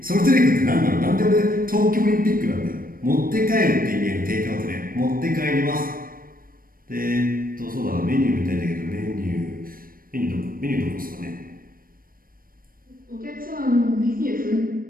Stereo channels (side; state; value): left; late; 0.41 ms